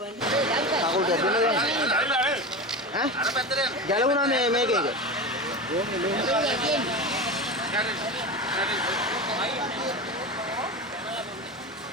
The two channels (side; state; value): both; normal; correlation 0.24